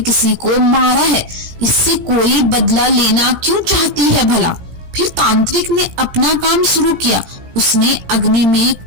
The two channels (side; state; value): left; late; 16 ms